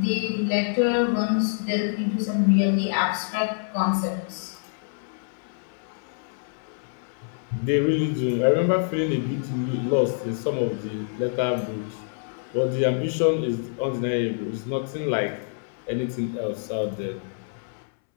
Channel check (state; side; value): silent; right; 61 dB below the other